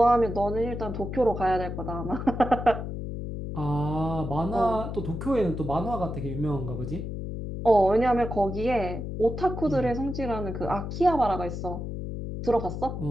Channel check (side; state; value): left; noise; hum, 6 dB below the sound